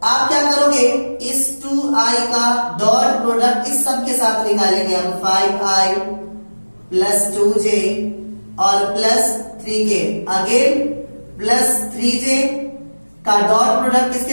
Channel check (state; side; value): inverted; both; correlation -1.00